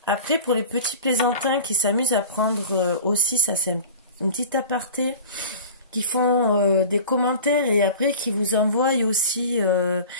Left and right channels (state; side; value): inverted; both; correlation -0.38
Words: Après, pour les petits plaisantins qui s'amusent à prendre aussi, ça c'est une petite aparté, qui font des commentaires et après qui vous envoient aussi